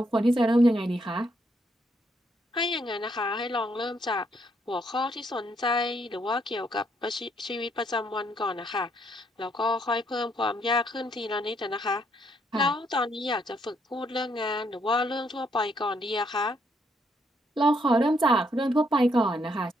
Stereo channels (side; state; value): both; normal; correlation 0.73